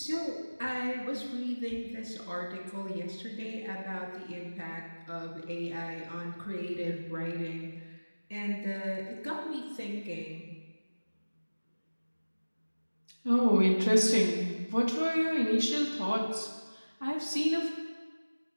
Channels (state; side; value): inverted; both; correlation -1.00